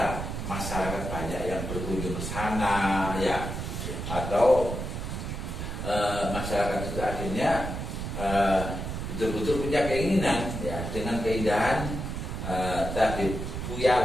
masyarakat banyak yang berkunjung ke sana ya. Atau masyarakat itu akhirnya betul-betul punya keinginan ya dengan keindahan tabib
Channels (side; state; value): right; noise; rumble, 5 dB below the sound